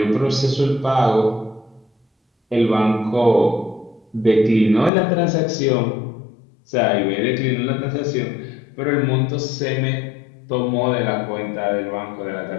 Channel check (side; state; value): right; drops out; at 4.9 s